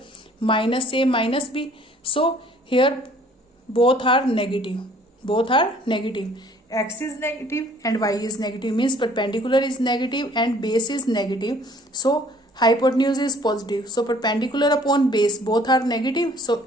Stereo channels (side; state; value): both; normal; correlation 0.56